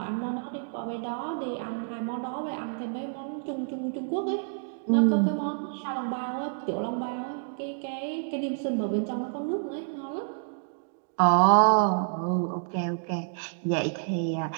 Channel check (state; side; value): silent; left; digital silence